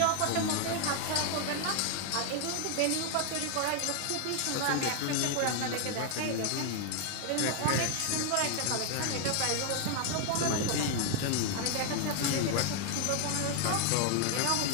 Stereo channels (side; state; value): both; different; correlation 0.00